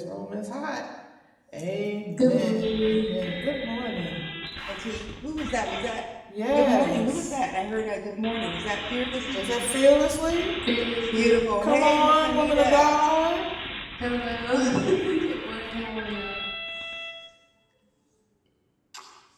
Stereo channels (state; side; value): identical; both; correlation 1.00